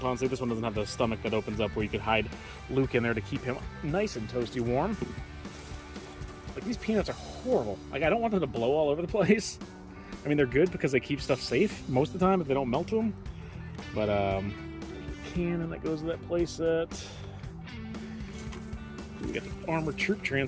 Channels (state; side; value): identical; both; correlation 1.00